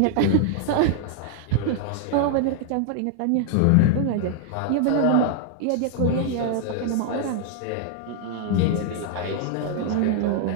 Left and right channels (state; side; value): different; both; correlation 0.00